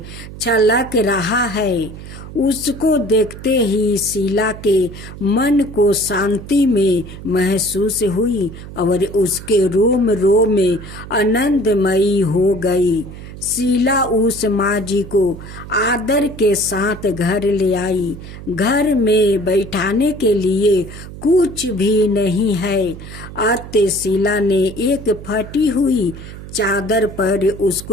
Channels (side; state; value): right; noise; hum, 13 dB below the sound